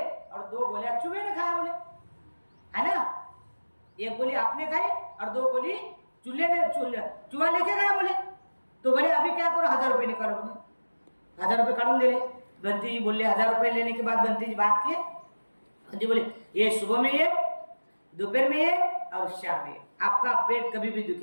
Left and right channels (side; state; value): both; inverted; correlation -1.00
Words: और 2 गोलियां चूहे ने खाया बोले, है ना? एक गोली आपने खाई और 2 गोली चूहा लेके गया बोले. तो बोले अभी क्या करो, 1000 रुपये निकालो बोले. ₹1000 काढून दिले। बंटी जी बोले 1000 लेने के बाद बंटी जी बात किए। बंटी बोले ये सुबह में ये, दोपहर में ये और शाम में, आपका पेट कभी भी